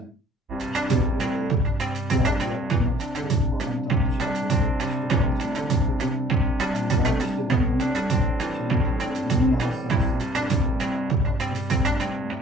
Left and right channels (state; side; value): normal; both; correlation 0.57